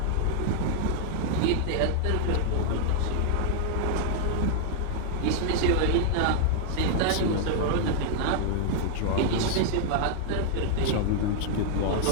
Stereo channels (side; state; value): both; different; correlation 0.00